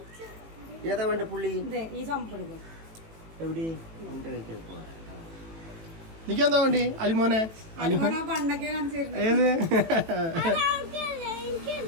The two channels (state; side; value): late; left; 18 ms